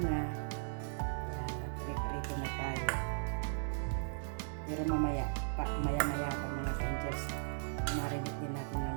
Ayan, nag-prepare na tayo. Pero maya pa mga ka-angels, marinate din natin ng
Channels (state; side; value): silent; left; digital silence